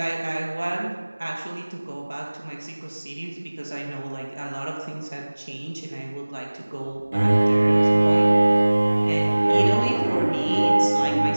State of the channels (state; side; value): inverted; both; correlation -1.00